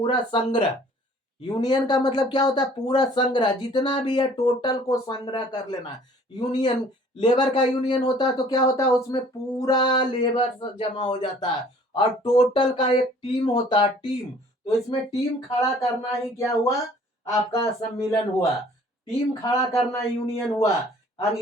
संग्रह। यूनियन का मतलब क्या होता है? पूरा संग्रह, जितना भी है टोटल को संग्रह कर लेना। यूनियन, लेबर का यूनियन होता है तो क्या होता है? उसमें पूरा लेबर जमा हो जाता है और टोटल का एक टीम होता है, टीम। तो इसमें टीम खड़ा करना ही क्या हुआ? आपका सम्मिलन हुआ। टीम खड़ा करना यूनियन हुआ।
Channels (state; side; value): normal; both; correlation 0.54